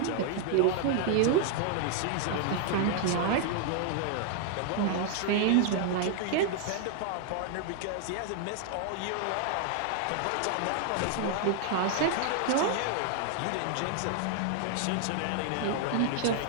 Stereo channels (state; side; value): different; both; correlation 0.00